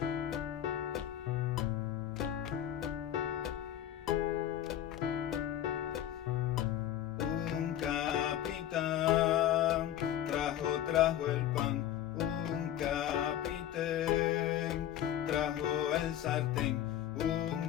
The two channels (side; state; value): right; quieter; 11.4 dB